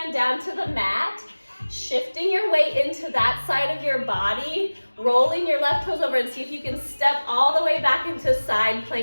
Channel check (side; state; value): both; inverted; correlation -1.00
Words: down to the mat, shifting your weight into that side of your body, rolling your left toes over, and see if you can step all the way back into side